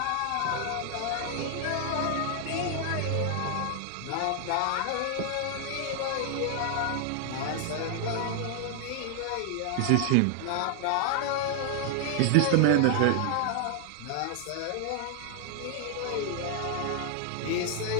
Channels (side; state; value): both; different; correlation 0.00